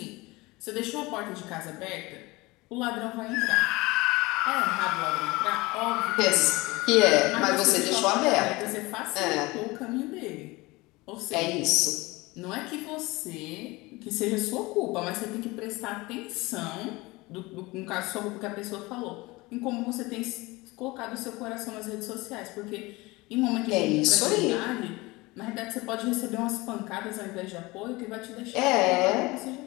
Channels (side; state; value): right; quieter; 22.4 dB